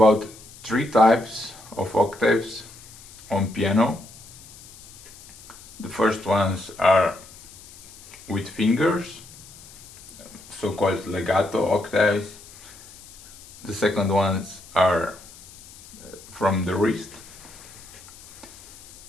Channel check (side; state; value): left; noise; hiss, 20 dB below the sound